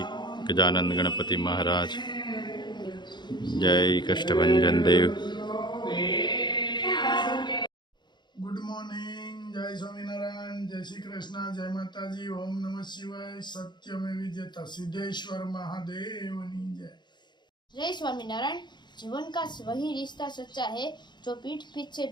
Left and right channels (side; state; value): right; late; 0.21 ms